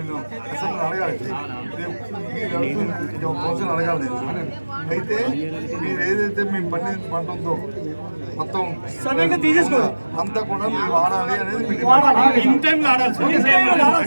అసలు అడగాలి కౌన్సిల్ అడగాలి. అయితే మీరు ఏదైతే మేము పంట ఉందో మొత్తం అంతా కూడా మీరు వాడాలి అనేది ఇన్ టైం ఆడాలి.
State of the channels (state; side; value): inverted; both; correlation -1.00